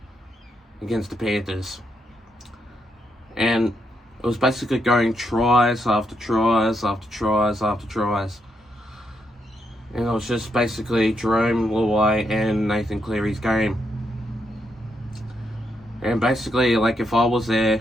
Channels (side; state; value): both; normal; correlation 0.80